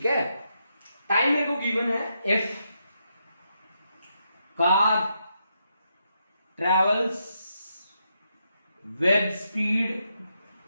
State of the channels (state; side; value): inverted; both; correlation -0.82